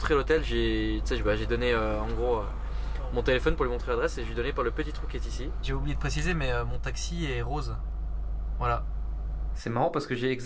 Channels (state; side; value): identical; both; correlation 1.00